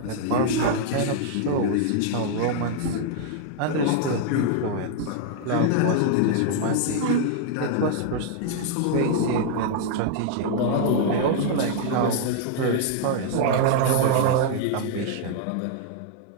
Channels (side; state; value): both; different; correlation 0.00